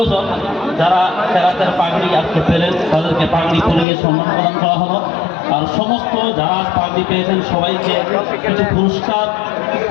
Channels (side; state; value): right; drops out; at 3.9 s